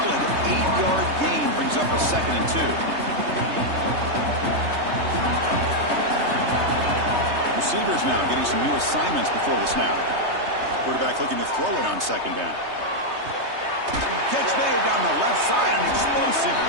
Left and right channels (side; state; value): left; late; 3.2 ms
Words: 8-yard gain brings up a 2nd and 2. Receivers now getting some new assignments before the snap. Quarterback looking to throw it on 2nd down. Catch made down the left side, an explosive